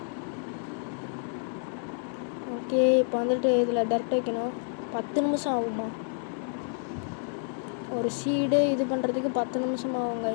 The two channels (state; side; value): silent; right; 59 dB below the other